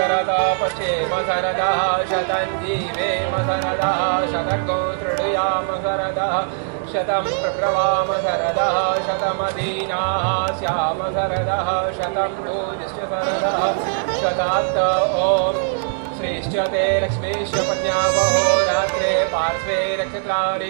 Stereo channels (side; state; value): left; silent; digital silence